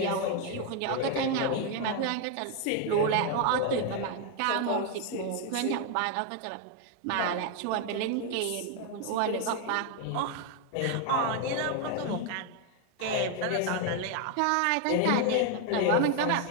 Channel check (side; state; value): both; different; correlation 0.01